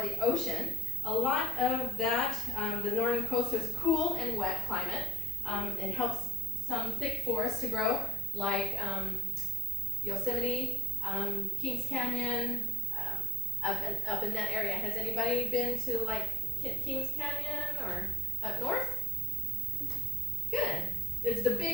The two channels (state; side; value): normal; both; correlation 0.60